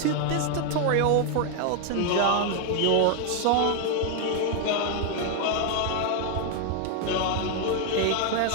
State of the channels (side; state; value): both; different; correlation 0.00